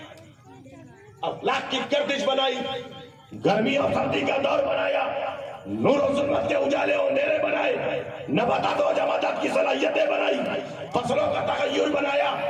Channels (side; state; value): both; identical; correlation 1.00